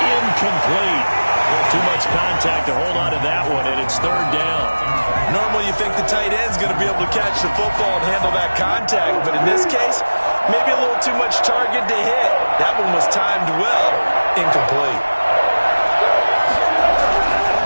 Too much contact to hold on to that one, and it's third down. Normally you think the tight end's going to be able to catch the football and handle that contact, but in this case, maybe a little too much target to hit. That one was timed well, incomplete.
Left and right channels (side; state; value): both; inverted; correlation -1.00